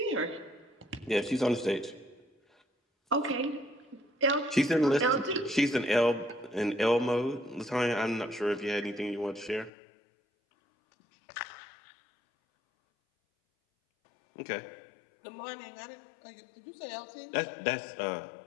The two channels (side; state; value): right; drops out; at 9.7 s